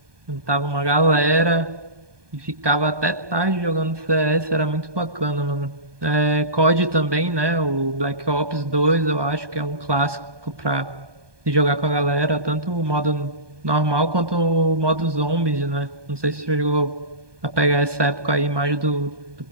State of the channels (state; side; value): late; left; 1.2 ms